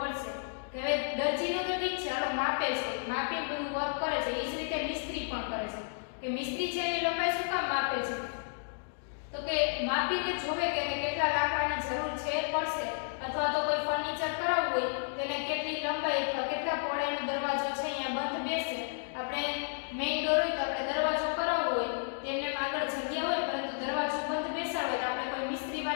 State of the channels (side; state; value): right; silent; digital silence